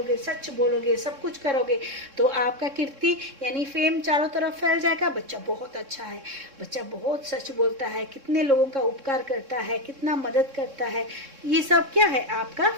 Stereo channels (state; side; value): late; left; 3.6 ms